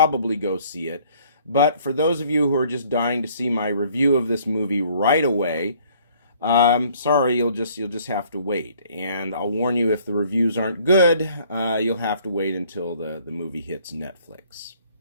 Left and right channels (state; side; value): inverted; both; correlation -0.59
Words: go see it. But for those of you who are just dying to see my review of this movie right away, sorry, you'll just have to wait. And I'll warn you, if the reviews aren't good, you'll have to wait until the movie hits Netflix.